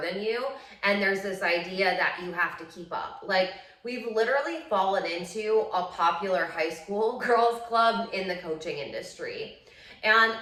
than you. And there's this idea that you have to keep up. Like, we've literally fallen into a popular high school girls club in the coaching industry. And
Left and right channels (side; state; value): both; identical; correlation 1.00